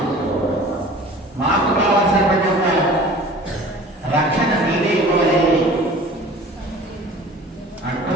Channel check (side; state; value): both; normal; correlation 0.44